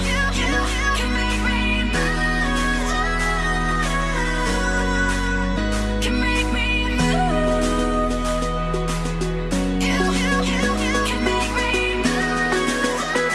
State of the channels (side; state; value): both; identical; correlation 1.00